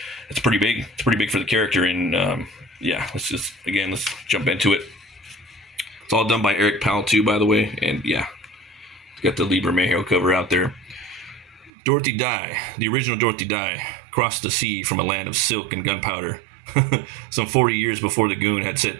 it's pretty big. It's pretty big for the character, and yeah, let's jump into it. It's all done by Eric Powell too, by the way, and yeah, got the Lee Bermejo cover out there. Dorothy Dye, the original Dorothy Dye, crossed the sea from a land of silk and gunpowder, some 40 years before the Goon had set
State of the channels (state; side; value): drops out; left; at 11.7 s